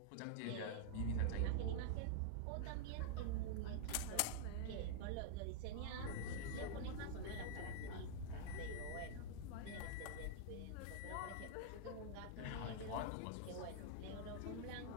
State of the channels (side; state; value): both; different; correlation -0.01